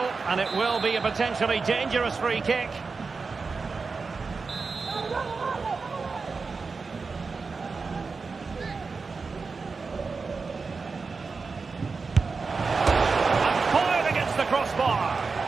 and it will be a potentially dangerous free kick. And fired against the crossbar.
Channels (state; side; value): quieter; left; 4.5 dB